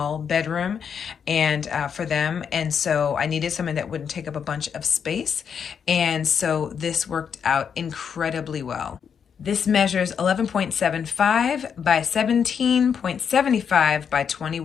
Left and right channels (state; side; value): quieter; right; 7.2 dB